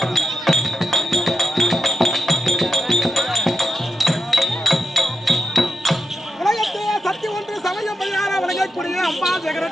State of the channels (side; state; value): both; normal; correlation 0.87